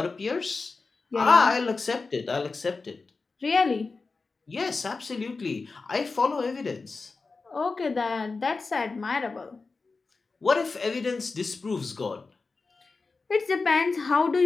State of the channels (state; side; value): quieter; right; 4.1 dB